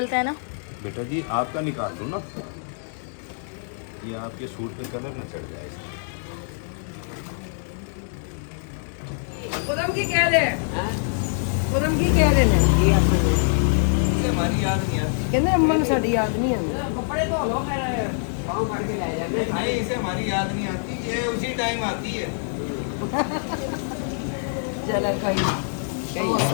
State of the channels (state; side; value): silent; right; digital silence